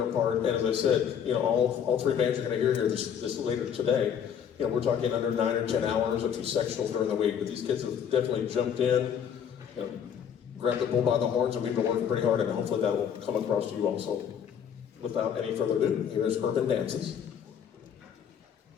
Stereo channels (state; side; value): quieter; right; 8.2 dB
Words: part. And as I said, all three bands you're going to hear here this later today, we're talking under 9 or 10 hours, a few sectionals during the week, but these kids have definitely jumped in, grabbed the bull by the horns, and we've been working pretty hard, and hopefully that will come across to you also. Without any further ado, here's Urban Dances.